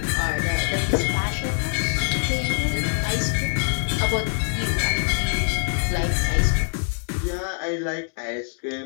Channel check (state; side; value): silent; right; 59 dB below the other